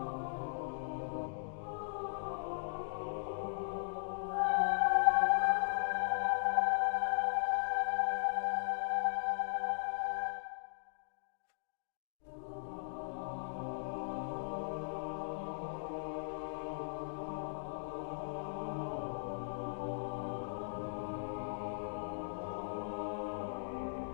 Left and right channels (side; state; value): right; silent; digital silence